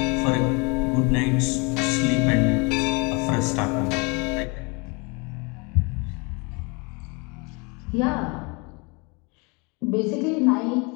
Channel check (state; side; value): quieter; right; 29.9 dB